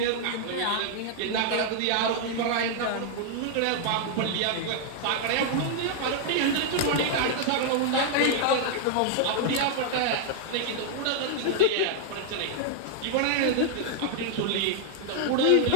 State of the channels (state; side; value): different; both; correlation 0.00